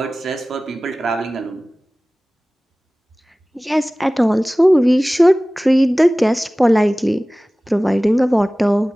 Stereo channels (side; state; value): both; normal; correlation 0.98